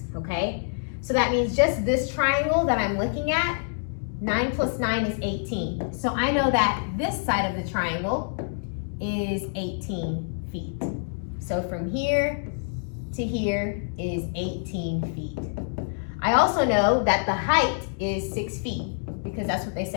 okay? So that means just this triangle that I'm looking at, 9 plus 9 is 18. So I know that this side of the triangle is 18 feet. So from here to here is 18 feet. I also know that the height is 6 feet because that's what they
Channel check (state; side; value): silent; right; digital silence